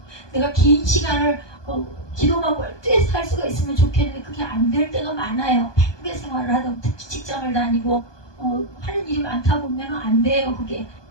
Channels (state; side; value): late; right; 1.2 ms